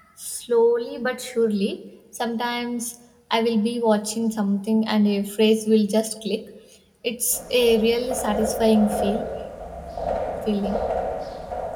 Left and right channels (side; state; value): both; identical; correlation 1.00